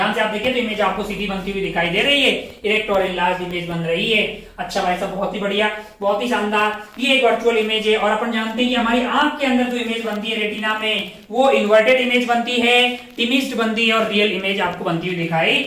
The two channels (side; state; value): both; identical; correlation 1.00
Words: से आप देखिए तो इमेज आपको सीधी बनती हुई दिखाई दे रही है, इरेक्ट और इनलार्ज इमेज बन रही है। अच्छा भाई साहब, बहुत ही बढ़िया, बहुत ही शानदार। ये एक वर्चुअल इमेज है और अपन जानते हैं कि हमारी आंख के अंदर जो इमेज बनती है रेटिना में, वो इन्वर्टेड इमेज बनती है, टिमिस्ड बनती है और रियल इमेज आपको बनती हुई दिखाई